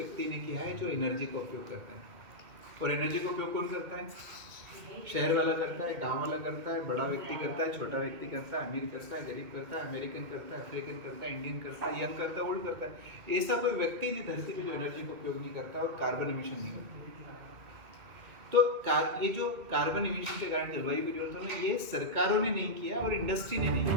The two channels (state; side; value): late; left; 2.4 ms